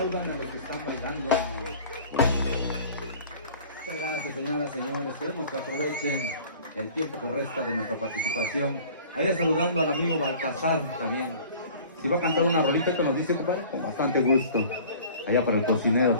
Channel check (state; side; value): inverted; both; correlation -0.46